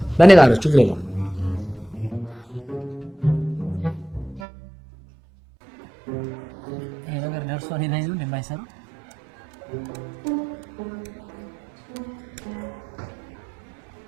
በእኔ ጋር ችግር የለውም። ይሄ ነገር ደርሶ እኔ ላይ ነው እንደማይሰራ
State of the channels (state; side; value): drops out; left; at 4.5 s